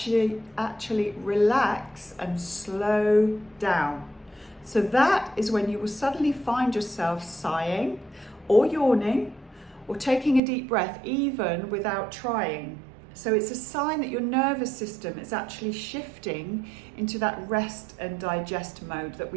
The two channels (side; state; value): left; drops out; at 10.4 s